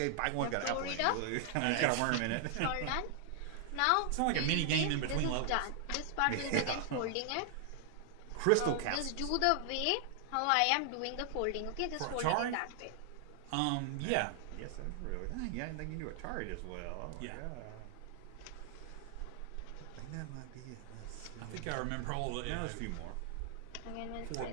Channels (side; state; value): both; different; correlation 0.00